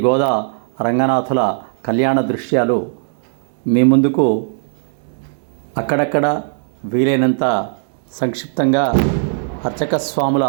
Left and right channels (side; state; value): left; silent; digital silence